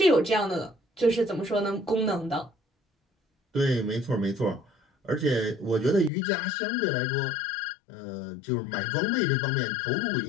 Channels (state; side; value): drops out; right; at 6.1 s